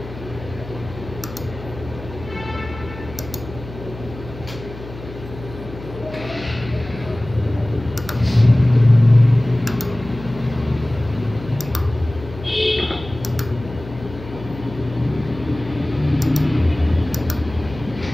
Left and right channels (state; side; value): noise; left; hum, 14 dB below the sound